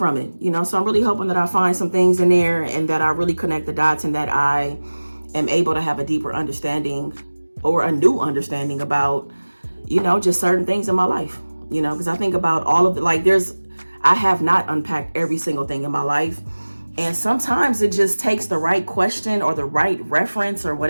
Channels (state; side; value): inverted; both; correlation -1.00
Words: it. You know, so I'm really hoping that I find some things in there and that I really connect the dots, and that I am able to have a deeper understanding, or a new understanding about, you know, just certain things in my life. You know, because I think about all of it, like, I have not unpacked every single thing in my life. And sometimes it just takes the right question or the right reference or